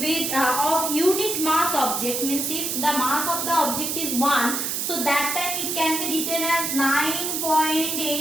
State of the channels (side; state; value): right; noise; hiss, 1 dB below the sound